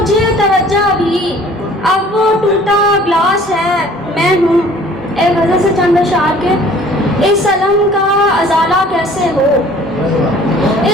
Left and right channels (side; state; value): both; normal; correlation 0.52